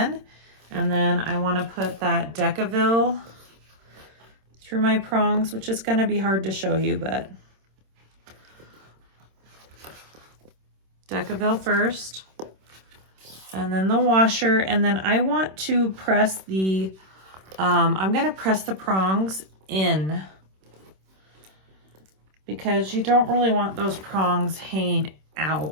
And then I want to put that Decaville through my prongs, which is going to be hard to show you, but Decaville first, and then the washer. And then I want to press the, I'm going to press the prongs in because you don't really want those prongs hanging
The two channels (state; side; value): late; left; 26 ms